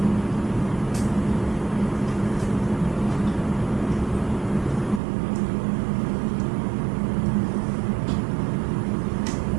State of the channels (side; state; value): left; drops out; at 5.0 s